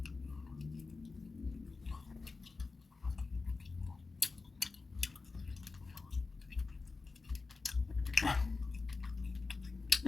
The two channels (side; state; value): right; quieter; 4.0 dB